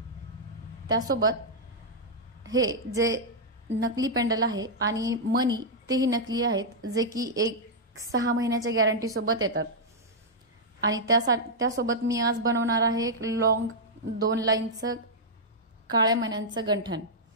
त्यासोबत हे जे नकली पेंडल आहे आणि मणी तेही नकली आहेत, जे की 6 महिन्याच्या गॅरंटी सोबत येतात। आणि त्यासोबत मी आज बनवणार आहे एक लॉंग 2 लाईनचं काळ्या मण्यांचं गंठण।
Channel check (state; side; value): normal; both; correlation -0.07